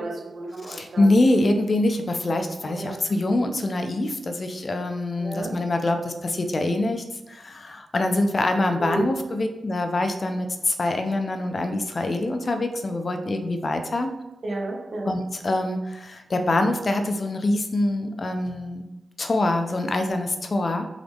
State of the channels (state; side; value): normal; both; correlation 0.92